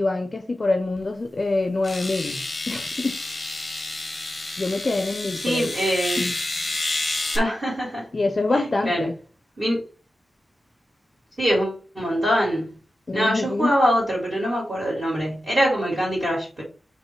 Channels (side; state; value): both; normal; correlation 0.92